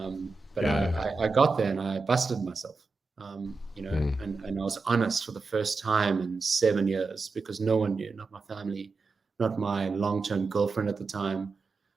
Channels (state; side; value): quieter; left; 4.1 dB